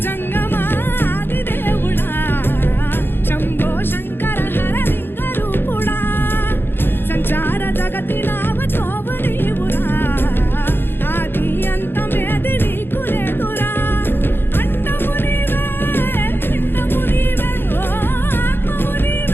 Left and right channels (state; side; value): late; right; 0.10 ms